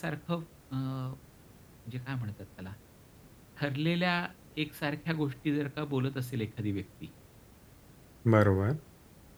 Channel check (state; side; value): identical; both; correlation 1.00